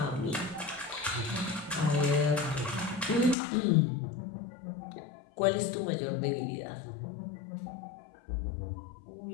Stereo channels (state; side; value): drops out; right; at 3.4 s